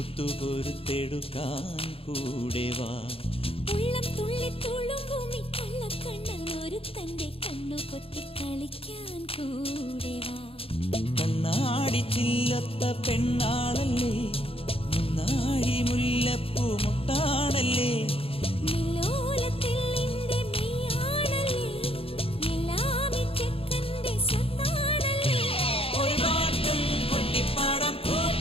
കൂടെ വാ. ഉള്ളം തുള്ളി തുളുമ്പുമി കള്ളക്കണ്ണൻ ഒരു തന്റെ കണ്ണു പൊത്തി കളിക്കാൻ കൂടെ വാ. കണ്ണാടി ചില്ലത്ത പെണ്ണാളല്ലേ, മുന്നാഴി മുല്ലപ്പൂ മുട്ടാണല്ലേ,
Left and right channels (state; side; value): late; right; 0.27 ms